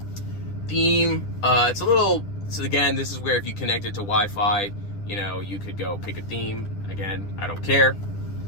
Theme, it's a little, so again, this is where if you connect it to Wi-Fi, you know, you could go pick a theme. Again, I don't care.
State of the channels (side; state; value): right; late; 10 ms